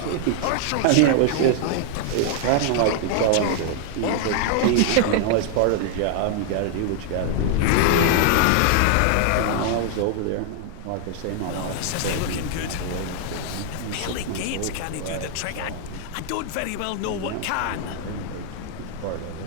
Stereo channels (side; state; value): both; different; correlation 0.00